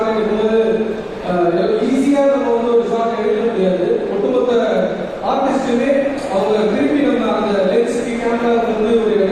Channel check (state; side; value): identical; both; correlation 1.00